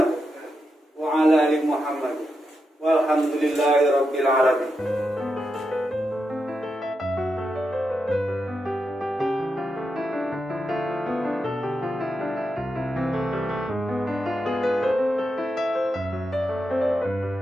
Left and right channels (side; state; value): both; normal; correlation 0.86